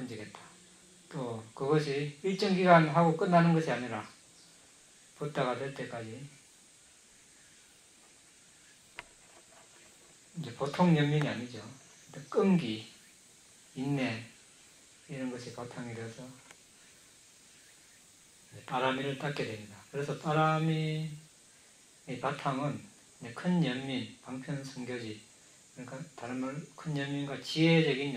또 그것이 일정 기간 하고 끝나는 것이 아니라 붓다가 될 때까지 이제 보통 연민이 아니죠. 끈기, 인내 이런 것이 바탕이 되어서 빠라미를 닦게 됩니다. 그래서 빠라미의 바탕은 큰 연민, 방편선교지, 그러니까 다른 말로 큰 연민과 지혜적인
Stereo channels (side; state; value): both; identical; correlation 1.00